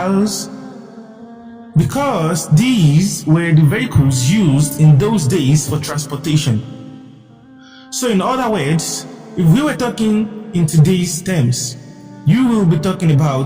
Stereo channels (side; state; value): both; identical; correlation 1.00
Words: Because these were the vehicles used in those days for transportation. So in other words, if we were talking in today's terms, you will be talking